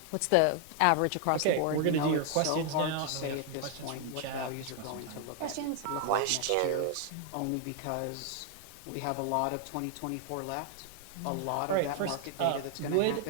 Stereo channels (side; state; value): both; different; correlation 0.00